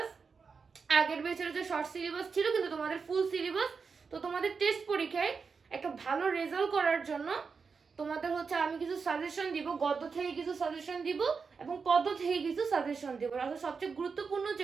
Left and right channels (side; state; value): left; quieter; 5.2 dB